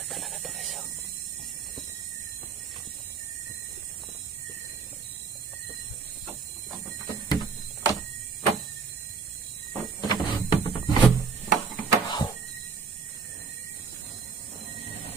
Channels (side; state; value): left; quieter; 5.5 dB